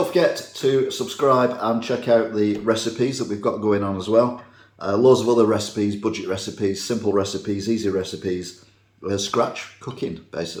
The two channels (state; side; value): identical; both; correlation 1.00